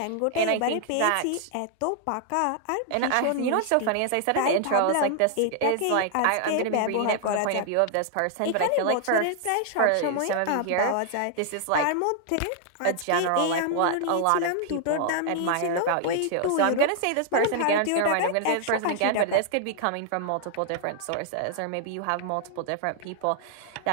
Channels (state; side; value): different; both; correlation 0.00